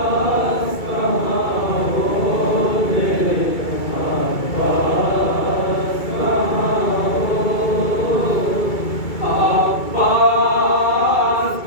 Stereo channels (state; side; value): late; right; 2.3 ms